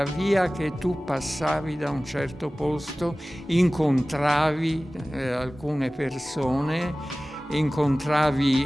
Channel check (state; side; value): normal; both; correlation 0.97